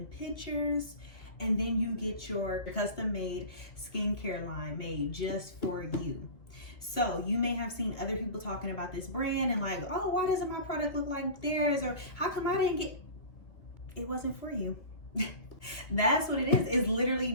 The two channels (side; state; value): right; late; 2.4 ms